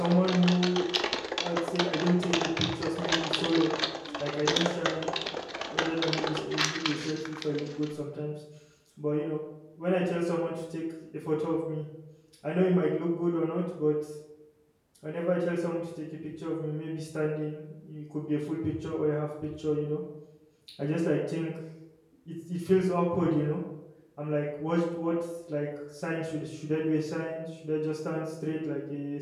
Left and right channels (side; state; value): both; identical; correlation 1.00